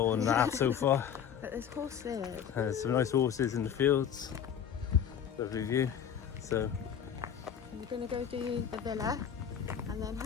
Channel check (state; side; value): quieter; right; 8.4 dB